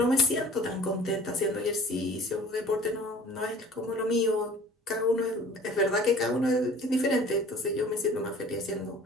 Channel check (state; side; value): normal; both; correlation 0.47